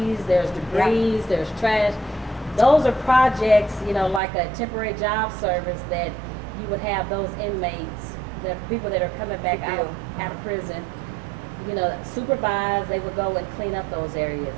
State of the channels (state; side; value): drops out; left; at 4.2 s